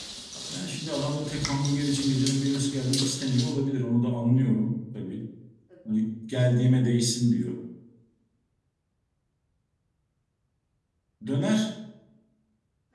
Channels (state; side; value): identical; both; correlation 1.00